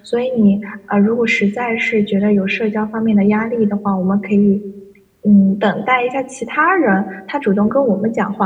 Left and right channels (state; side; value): identical; both; correlation 1.00